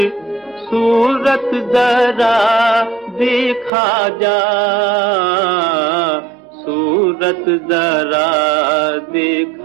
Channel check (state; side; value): drops out; left; at 3.7 s